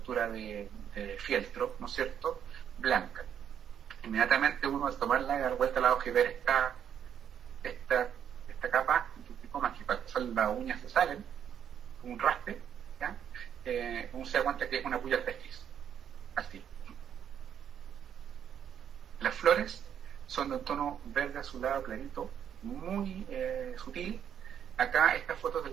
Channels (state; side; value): quieter; left; 8.9 dB